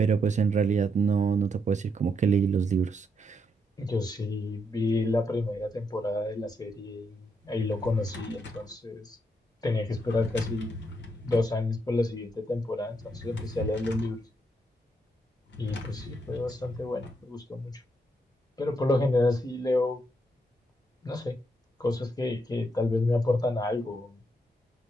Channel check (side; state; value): both; normal; correlation 0.78